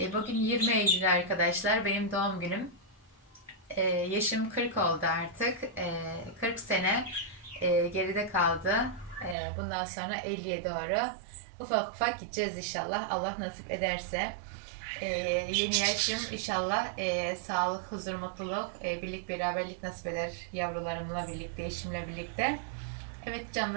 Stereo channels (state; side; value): drops out; left; at 9.3 s